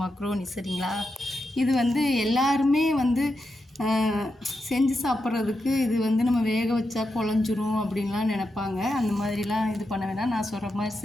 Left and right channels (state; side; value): normal; both; correlation 0.87